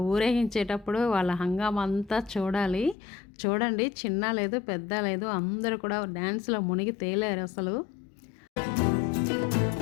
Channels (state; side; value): drops out; right; at 3.0 s